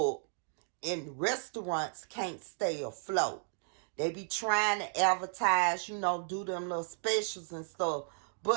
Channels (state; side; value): silent; left; digital silence